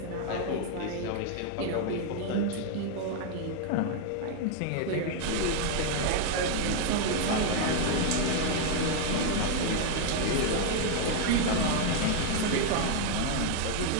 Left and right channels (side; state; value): both; different; correlation 0.00